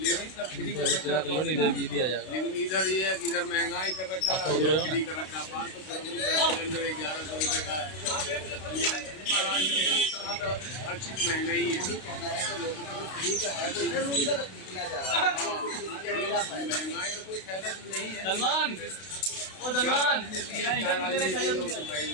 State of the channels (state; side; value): late; right; 32 ms